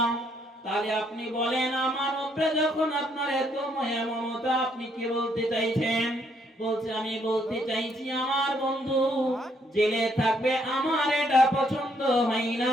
তাহলে আপনি বলেন আমার উপরে যখন আপনার এত মায়া মমতা, আপনি কি বলতে চাইছেন? বলছে আমি বলতে চাইছি আমার বন্ধু জেলে থাকবে, আমার এটা পছন্দ হয়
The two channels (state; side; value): normal; both; correlation 0.71